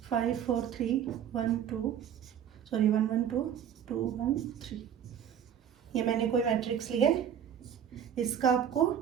5 4 3 1 2 1 1 2 2 1 3। ये मैंने कोई मैट्रिक्स लिया है, इसका आपको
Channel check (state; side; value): quieter; left; 9.0 dB